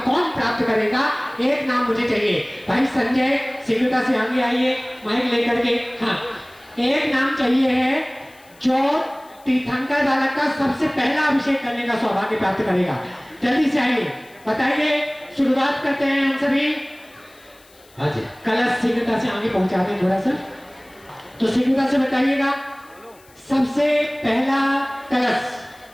प्राप्त करेगा? एक नाम मुझे चाहिए। भाई संजय सिंगुटा से आगे आइए माइक लेकर के। हाँ, एक नाम चाहिए है जो तीर्थंकर बालक का सबसे पहला अभिषेक करने का सौभाग्य प्राप्त करेगा। जल्दी से आइए, बताइए। शुरुआत करते हैं हम सभी। हाँ जी, कलश सिंगुटा से आगे पहुंचा दें थोड़ा सा, तो सिंगुटा से बताइएगा सबसे पहला कलश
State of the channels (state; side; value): noise; left; hiss, 28 dB below the sound